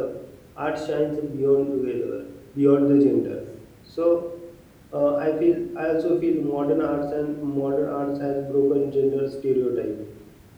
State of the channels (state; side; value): identical; both; correlation 1.00